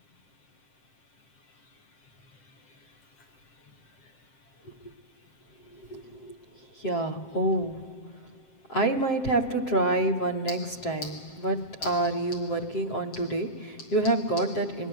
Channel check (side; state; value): right; late; 7.6 ms